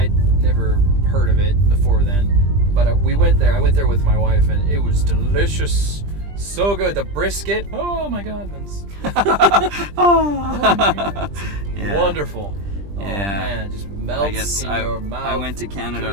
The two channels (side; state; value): left; late; 20 ms